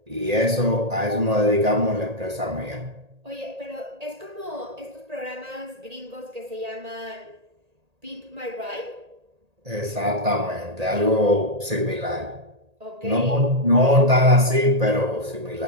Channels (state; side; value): late; left; 1.8 ms